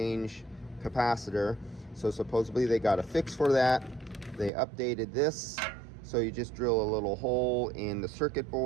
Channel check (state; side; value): drops out; left; at 4.5 s